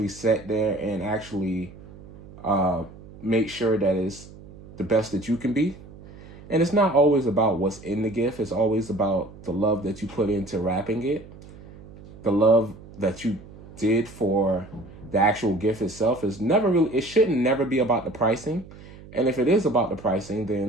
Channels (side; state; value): right; noise; hum, 19 dB below the sound